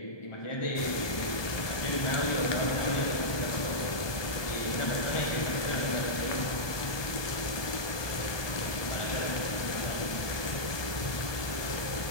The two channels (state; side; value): late; right; 1.2 ms